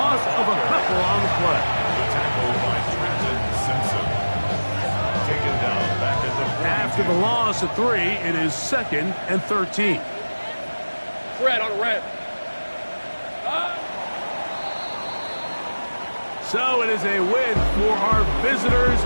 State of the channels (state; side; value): inverted; both; correlation -1.00